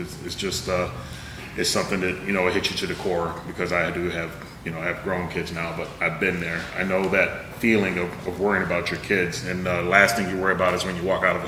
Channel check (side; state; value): both; identical; correlation 1.00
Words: it's just, it's something that, it hits you to the core, because I do have, I have grown kids now, but I've been there. I know that feeling of worrying about your kids, and the last thing you worry about is when you walk out of a